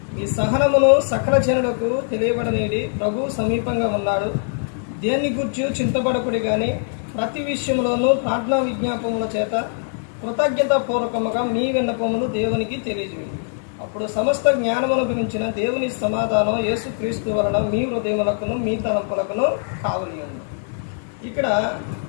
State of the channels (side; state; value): right; silent; digital silence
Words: ఈ సహనమును సకల జనులకు తెలియబడనీడి, ప్రభువు సమీపంగా ఉన్నాడు. దేన్ని గూర్చి చింతపడకుడి గాని ప్రతి విషయంలోనూ ప్రార్థనా విజ్ఞాపముల చేత కృతజ్ఞతాపూర్వకముగా మీ విన్నపములు దేవునికి తెలియజేయండి. అప్పుడు సమస్త జ్ఞానమును గురించిన దేవుని సమాధానం యేసుక్రీస్తు వలన మీ హృదయములకును మీ తలంపులకును కావలియండి. ఇక్కడ